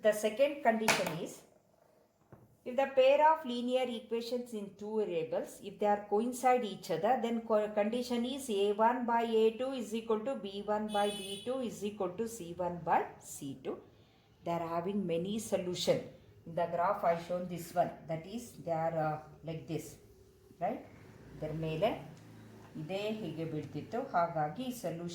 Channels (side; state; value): both; identical; correlation 1.00